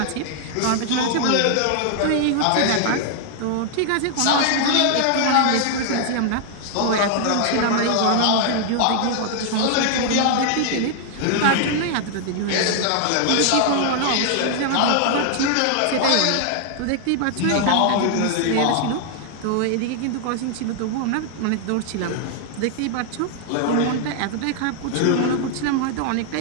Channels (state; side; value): different; both; correlation 0.00